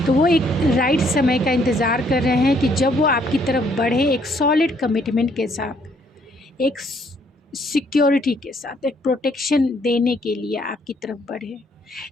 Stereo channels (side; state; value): both; normal; correlation 0.67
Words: तो वो एक राइट समय का इंतज़ार कर रहे हैं कि जब वो आपकी तरफ बढ़े एक सॉलिड कमिटमेंट के साथ, एक सिक्योरिटी के साथ, एक प्रोटेक्शन देने के लिए आपकी तरफ बढ़े,